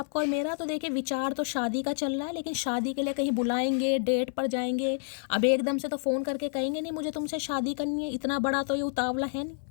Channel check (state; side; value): silent; right; 59 dB below the other